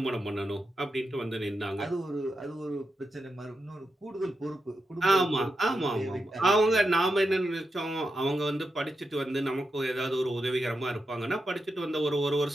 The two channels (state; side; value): normal; both; correlation 0.87